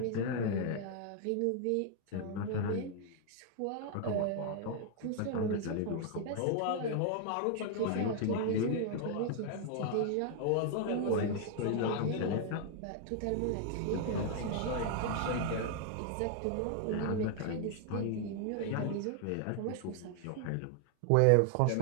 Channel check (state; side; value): different; both; correlation 0.00